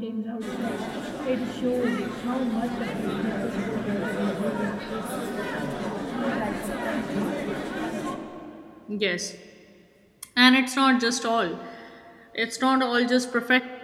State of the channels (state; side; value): identical; both; correlation 1.00